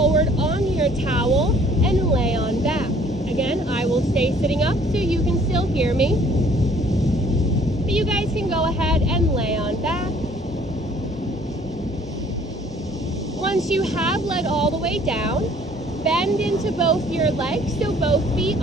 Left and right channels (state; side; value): normal; both; correlation 0.57